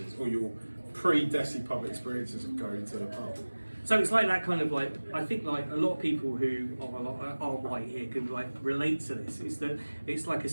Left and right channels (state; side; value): inverted; both; correlation -1.00